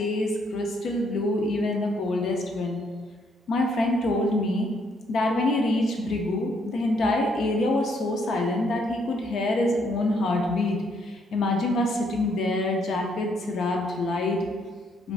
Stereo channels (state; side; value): normal; both; correlation 0.71